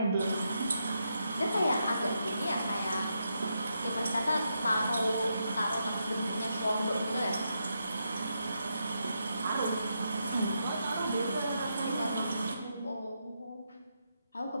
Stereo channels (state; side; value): inverted; both; correlation -0.83